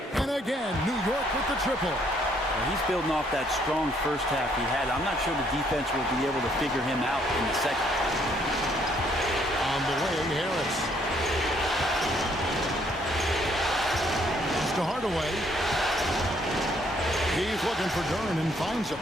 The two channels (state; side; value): normal; both; correlation 0.67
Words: And again, New York with the triple. He's building off that strong first half he had. I'm not sure the defense will be able to figure him out in the second. On the wing, Harris. It's to Hardaway. He's looking for Duren and finds him.